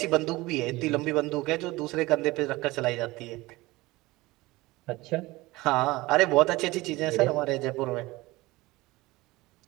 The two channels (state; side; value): quieter; left; 20.5 dB